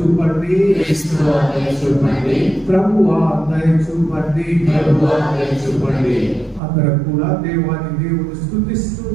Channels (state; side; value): drops out; left; at 6.6 s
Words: ప్రభువా దయ చూపండి. అందరం కూడా దేవుని స్తుతిస్తూ,